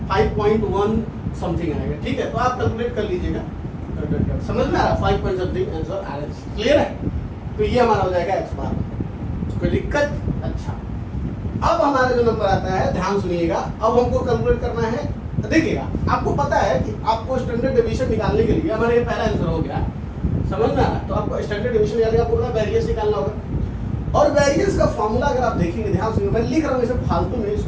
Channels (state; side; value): identical; both; correlation 1.00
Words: 5.1 समथिंग आएगा, ठीक है, तो आप कैलकुलेट कर लीजिएगा, समझ में आ रहा, 5 पॉइंट समथिंग आंसर आ रहा है, क्लियर है। तो ये हमारा हो जाएगा एक्स बार, कोई दिक्कत। अच्छा, अब हमारा जो नंबर आता है, ध्यान सुनिएगा, अब हमको कैलकुलेट करना है, देखिएगा आपको पता है कि आपको स्टैंडर्ड डेविएशन निकालने के लिए, हमारा ये पहला आंसर हो गया, समझ में आ रहा है, तो आपको स्टैंडर्ड डेविएशन निकालने का पूरा वेरिएंस निकालना होगा, और वेरिएंस का फॉर्मूला अगर आप देखेंगे, ध्यान सुनिए, मैं लिख रहा हूँ इसे फालतू में,